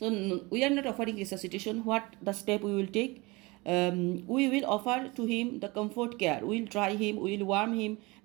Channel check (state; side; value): quieter; left; 24.4 dB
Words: we are not offering resuscitation. What the step we will take? We will offer to him the comfort care. We will dry him, we will warm him,